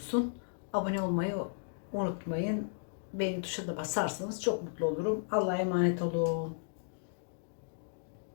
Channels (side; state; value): right; silent; digital silence